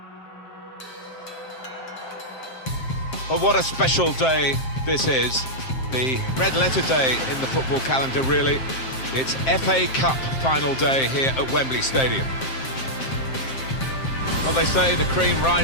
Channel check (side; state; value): right; late; 7.6 ms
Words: Well, what a special day this is. The red letter day in the football calendar, really. It's FA Cup final day here at Wembley Stadium. Well, they say the cream